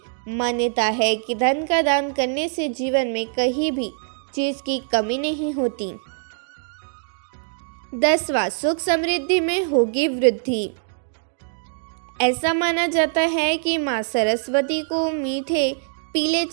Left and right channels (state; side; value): silent; left; 63 dB below the other